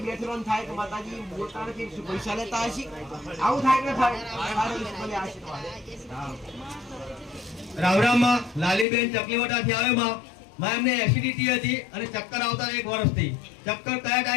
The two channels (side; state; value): right; drops out; at 8.8 s